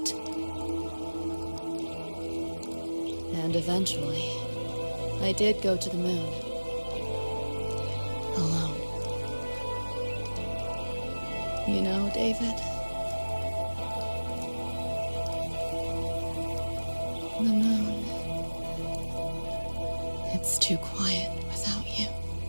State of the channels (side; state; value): both; inverted; correlation -1.00